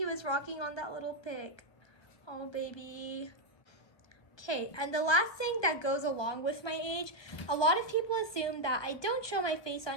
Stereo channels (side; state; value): right; late; 1.2 ms